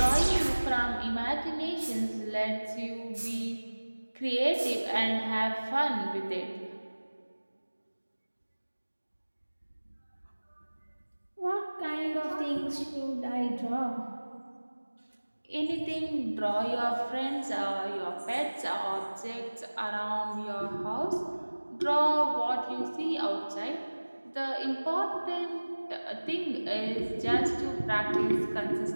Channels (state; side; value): inverted; both; correlation -1.00